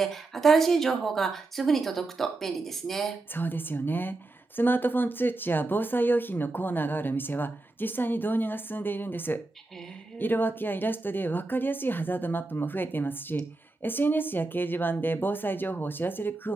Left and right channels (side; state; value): left; quieter; 3.2 dB